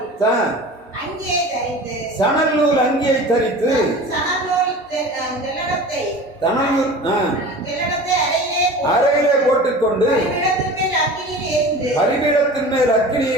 சணல் நூல் அங்கியை தரித்து அறையிலே போட்டுக்கொண்டு பலிபீடத்தின் மேல்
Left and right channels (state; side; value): normal; both; correlation 0.37